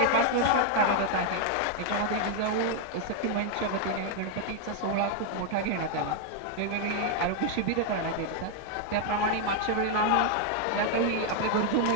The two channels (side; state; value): both; different; correlation 0.00